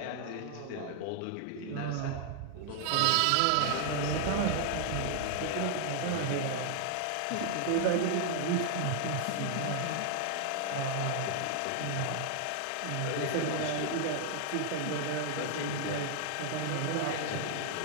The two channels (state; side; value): different; both; correlation 0.00